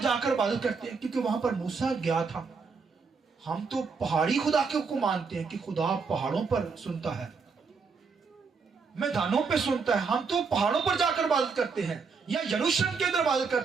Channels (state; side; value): quieter; left; 5.1 dB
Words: इबादत करते हैं, क्योंकि वहां पर मूसा गया था। हम तो पहाड़ी खुदा को मानते हैं कि खुदा पहाड़ों पर सुनता है, मैदानों पे सुनता है। हम तो पहाड़ों पर जाकर इबादत करते हैं या यरूशलेम के अंदर इबादत